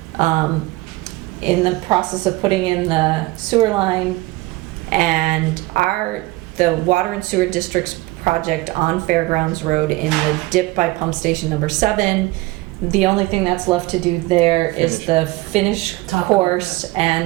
in the process of putting in the sewer line, and the Water and Sewer District's project on Fairgrounds Road in the dip by pump station number 7. The only thing that's left to do there is the finish Top coat, course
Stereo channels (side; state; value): left; quieter; 20.3 dB